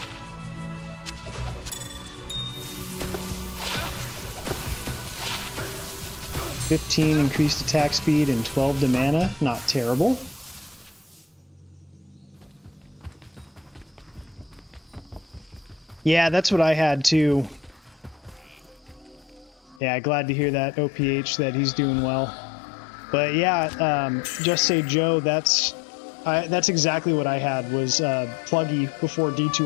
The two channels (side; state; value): right; drops out; at 19.8 s